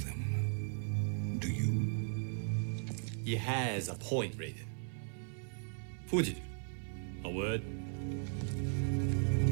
Do you? He has a point, Raiden. Fuji, a word?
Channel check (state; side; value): silent; left; 53 dB below the other